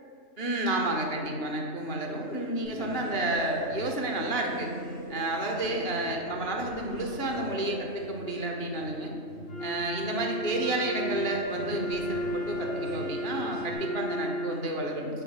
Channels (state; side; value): late; right; 2.9 ms